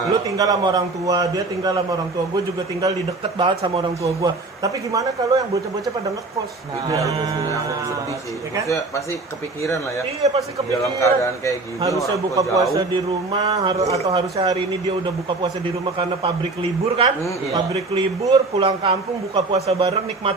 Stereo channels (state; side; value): quieter; left; 3.4 dB